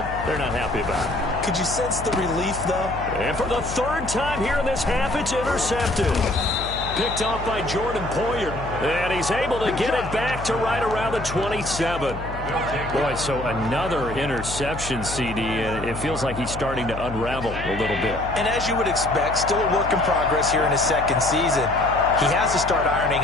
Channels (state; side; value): noise; left; hum, 9 dB below the sound